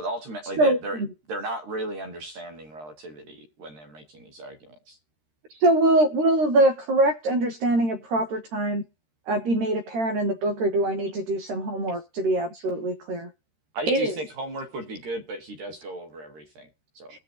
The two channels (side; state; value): left; late; 13 ms